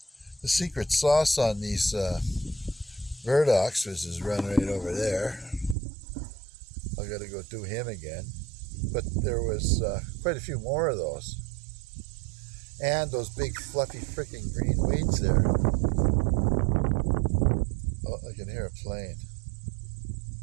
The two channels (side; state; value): left; drops out; at 5.8 s